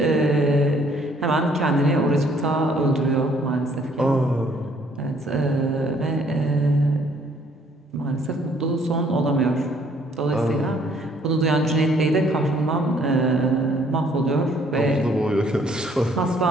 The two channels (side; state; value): both; normal; correlation 0.62